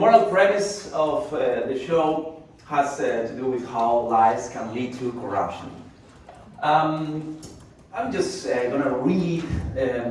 premise of the show has to do with how lies can lead to corruption. I'm just going to read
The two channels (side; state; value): both; identical; correlation 1.00